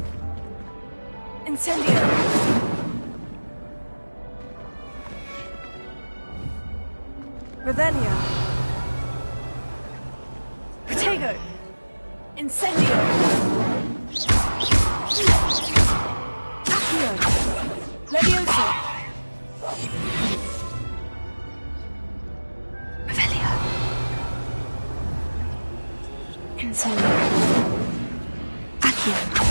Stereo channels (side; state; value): both; inverted; correlation -1.00